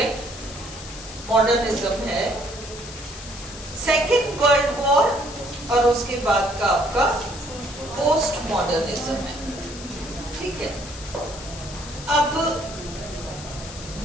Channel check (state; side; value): noise; left; hiss, 13 dB below the sound